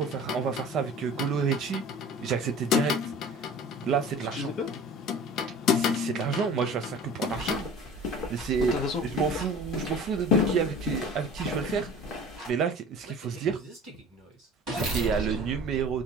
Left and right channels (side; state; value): both; normal; correlation 0.42